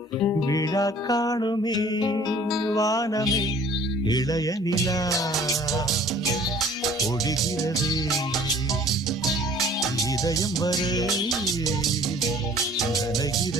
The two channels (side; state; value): both; normal; correlation 0.52